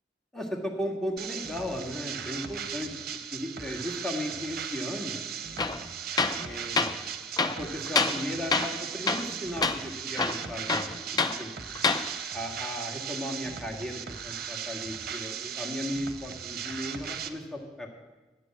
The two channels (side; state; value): both; normal; correlation 0.35